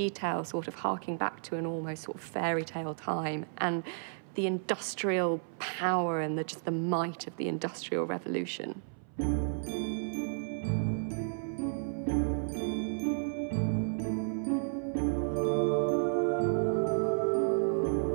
sort of harking back to an almost sort of fairy tale time, and the industrial power and just the might of the Industrial Revolution.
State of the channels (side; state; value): left; silent; 56 dB below the other